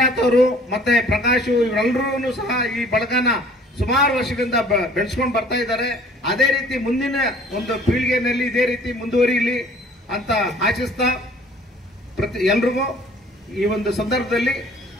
ಅವರು ಮತ್ತೆ ಪ್ರಕಾಶ್ ಇವರೆಲ್ಲರೂ ಸಹ ಈ ಬಳಗನ ಸುಮಾರು ವರ್ಷಗಳಿಂದ ಬೆಳೆಸ್ಕೊಂಡು ಬರ್ತಾ ಇದ್ದಾರೆ. ಅದೇ ರೀತಿ ಮುಂದಿನ ಒಂದು ಪೀಳಿಗೆಯಲ್ಲಿ ಇದೇ ರೀತಿ ಮುಂದುವರಿಯಲಿ ಅಂತ ಆಶಿಸ್ತಾ ಎಲ್ರಿಗೂ ಈ ಒಂದು ಸಂದರ್ಭದಲ್ಲಿ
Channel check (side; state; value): both; normal; correlation 0.53